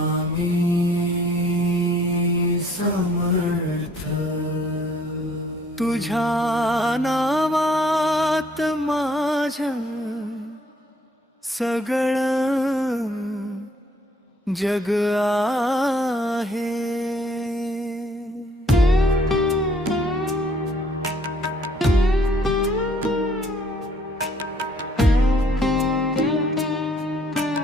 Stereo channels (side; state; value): both; normal; correlation 0.62